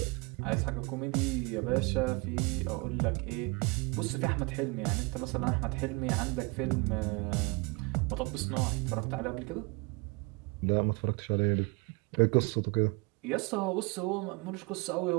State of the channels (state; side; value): quieter; left; 28.3 dB